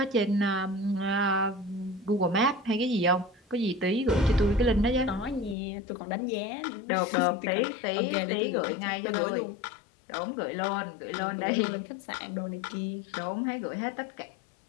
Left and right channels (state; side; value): drops out; right; at 5.6 s